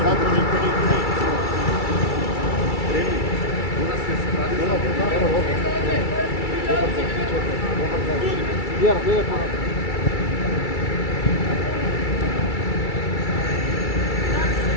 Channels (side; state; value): right; late; 2.3 ms